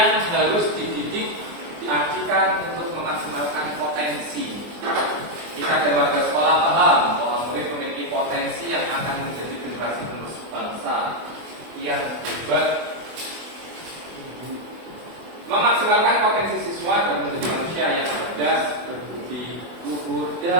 harus dididik diartikan untuk memaksimalkan potensi. Kita dan warga sekolah paham bahwa murid memiliki potensi yang akan menjadi generasi penerus bangsa yang hebat. Memaksimalkan potensi siswa dan menjadi manusia yang cerdas, berbudi luhur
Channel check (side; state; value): left; late; 24 ms